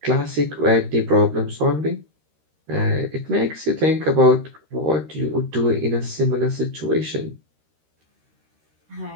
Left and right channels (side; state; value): left; late; 13 ms